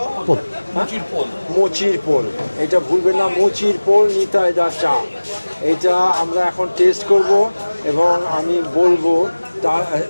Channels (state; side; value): inverted; both; correlation -1.00